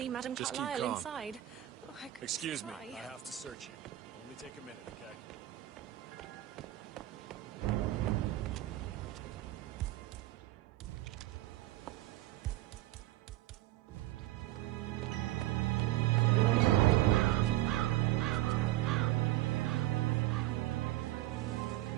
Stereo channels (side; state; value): left; quieter; 15.8 dB